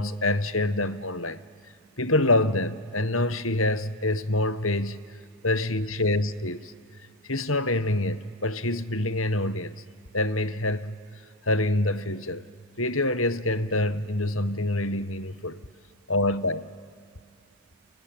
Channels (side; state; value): both; normal; correlation 0.10